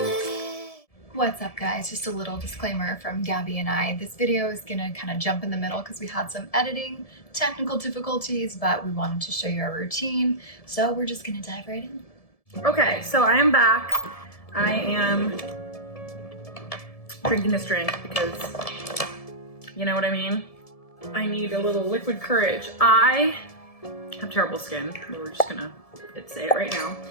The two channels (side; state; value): right; late; 1.7 ms